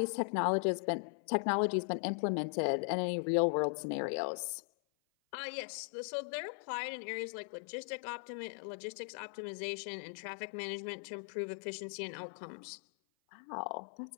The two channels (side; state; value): right; silent; 52 dB below the other